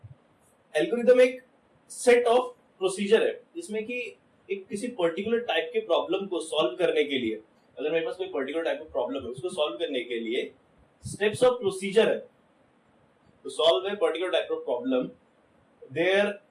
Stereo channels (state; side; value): identical; both; correlation 1.00